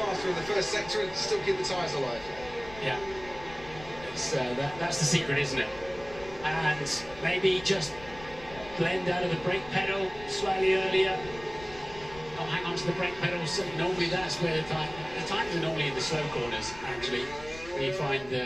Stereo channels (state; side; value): noise; left; rumble, 18 dB below the sound